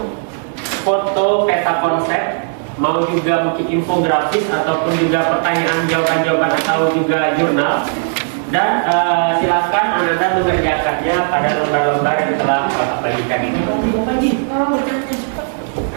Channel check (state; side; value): silent; left; digital silence